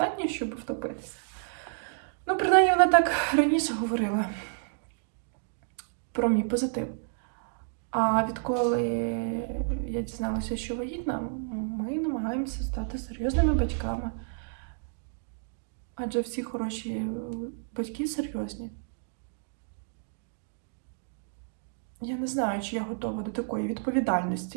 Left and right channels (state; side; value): silent; left; digital silence